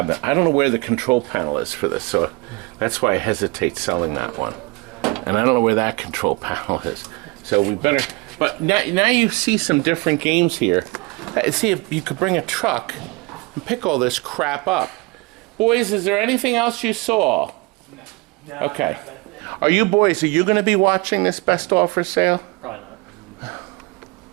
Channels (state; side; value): quieter; left; 25.4 dB